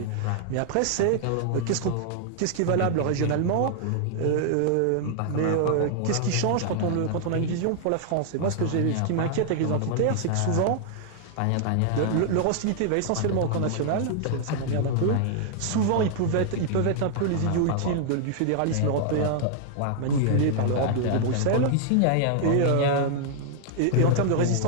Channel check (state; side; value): different; both; correlation 0.00